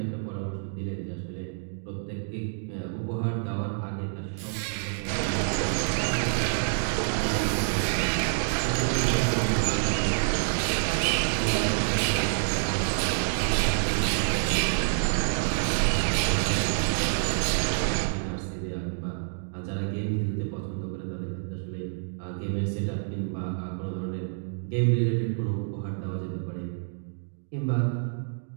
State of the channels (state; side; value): silent; left; digital silence